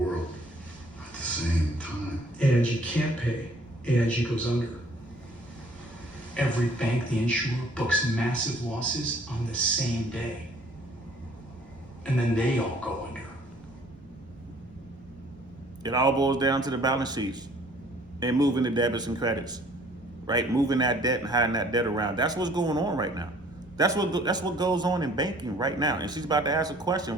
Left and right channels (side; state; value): right; noise; rumble, 26 dB below the sound